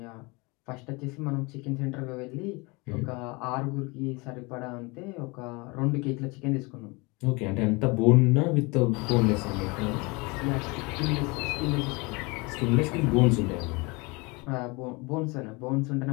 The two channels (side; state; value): right; quieter; 26.9 dB